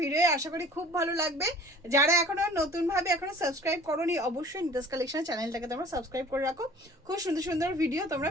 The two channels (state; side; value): normal; both; correlation 0.48